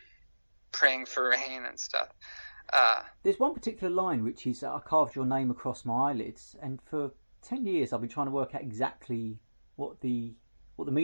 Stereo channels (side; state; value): both; inverted; correlation -1.00